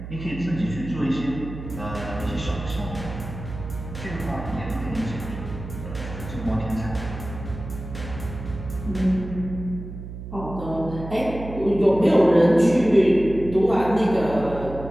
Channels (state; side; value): noise; right; hum, 10 dB below the sound